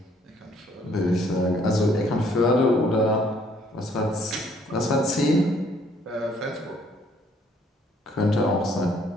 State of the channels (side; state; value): both; normal; correlation 0.64